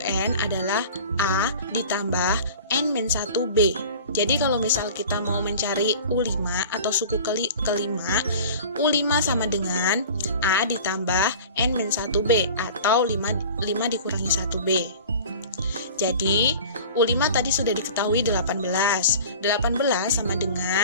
adalah A ditambah N-1B. Jadi kalau misal kita mau mencari U5 atau suku kelima, U5 sama dengan A ditambah N-1B atau 5 dikurangi 1B. Jadi U5 tadi sudah diketahui 18. 18 sama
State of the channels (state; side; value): inverted; both; correlation -0.41